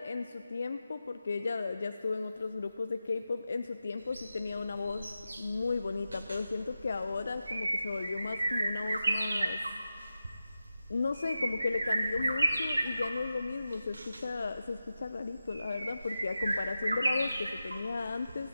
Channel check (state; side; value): inverted; both; correlation -0.91